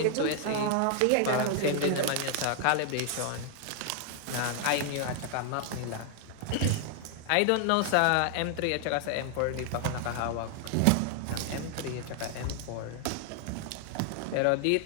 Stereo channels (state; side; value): different; both; correlation 0.00